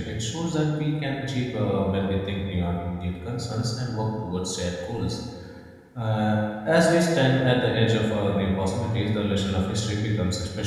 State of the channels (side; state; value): both; identical; correlation 1.00